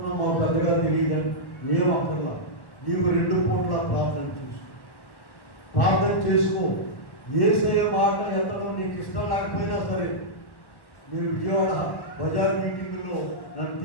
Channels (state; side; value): late; right; 1.1 ms